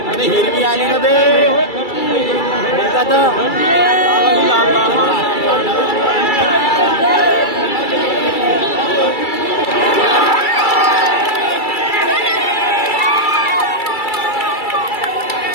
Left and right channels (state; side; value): late; right; 2.3 ms